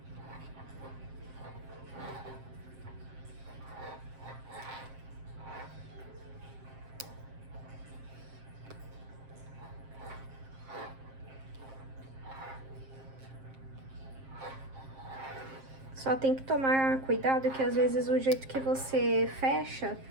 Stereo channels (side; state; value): left; late; 7.5 ms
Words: Só tem que tomar cuidado que às vezes o jeito que você fecha